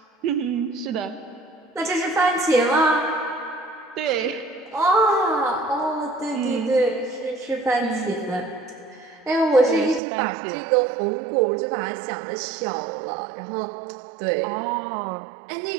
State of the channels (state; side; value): drops out; left; at 10.0 s